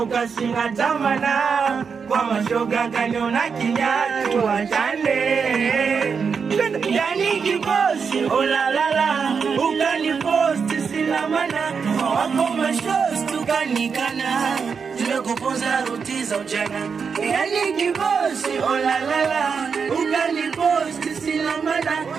singa tamana. Kwa mashoga kaniona kinyatu wachane, yani kibosi olalala. Ukaniposti sina mana, wako mashows tukanikana. Tumekuponza ruti za ujana, yani kibosi olalala. Ukaniposti sina mana,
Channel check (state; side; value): quieter; left; 5.9 dB